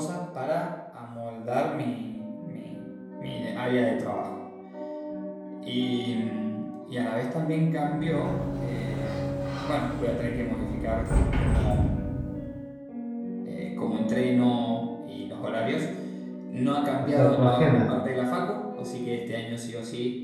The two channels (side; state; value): both; identical; correlation 1.00